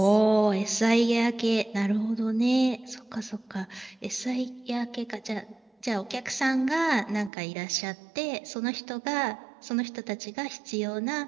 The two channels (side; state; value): left; drops out; at 7.3 s